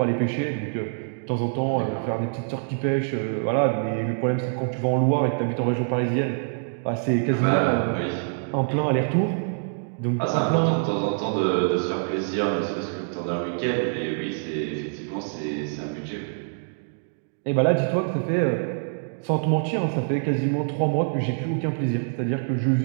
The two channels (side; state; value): left; silent; digital silence